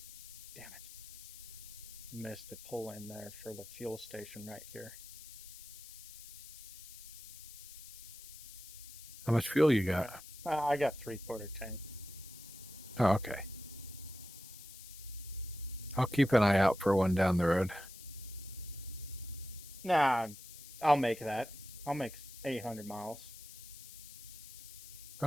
damn it. Missed the pull in there for the fuel station right here. How much fuel you got? I got 3/4 tank. Oh, okay. I'll keep an eye out for one down the road. Nah, I'll make that. I'll make 800 miles.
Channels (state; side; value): noise; left; hiss, 15 dB below the sound